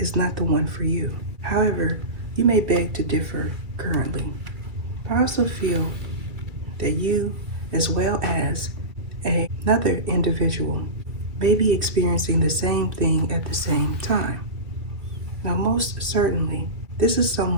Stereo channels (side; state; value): left; late; 2.3 ms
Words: not the one for you. However, you may beg to differ currently. I also feel that you, as well as another individual, may be experiencing the same thing at the same time. Now, most certainly, this is